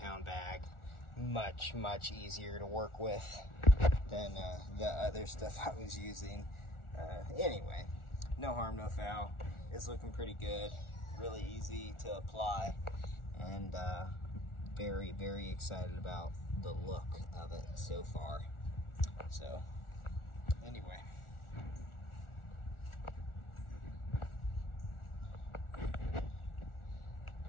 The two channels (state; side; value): late; right; 1.4 ms